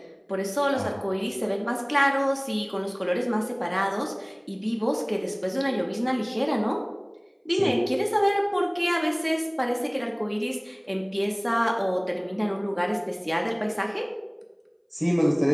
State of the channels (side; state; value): both; identical; correlation 1.00